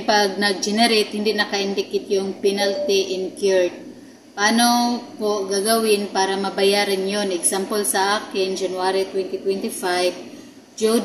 pag nag-generate, hindi naka-indicate yung penalty incurred. Paano po gagawin para mabayaran yon? Example sa akin, January 2025, due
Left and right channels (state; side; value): identical; both; correlation 1.00